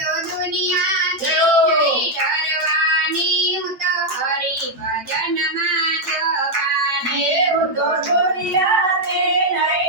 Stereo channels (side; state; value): left; late; 8.9 ms